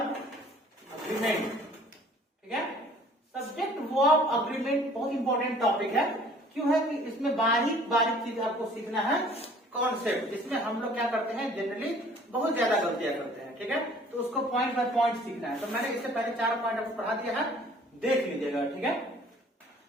अग्रीमेंट, ठीक है। सब्जेक्ट वर्ब अग्रीमेंट बहुत इंपॉर्टेंट टॉपिक है। क्यों है कि इसमें बारीक बारीक चीज आपको सीखना है, कॉन्सेप्ट जिसमें हम लोग क्या करते हैं जनरली बहुत ज्यादा गलतियां करते हैं, ठीक है। तो उसको पॉइंट बाय पॉइंट सीखना है। तो मैंने इससे पहले 4 पॉइंट आपको पढ़ा दिया है, देख लीजिएगा, ठीक है।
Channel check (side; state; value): both; normal; correlation 0.53